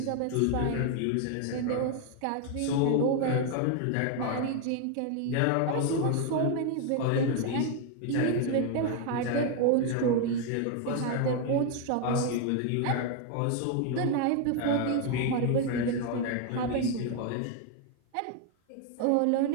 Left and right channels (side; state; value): both; different; correlation 0.01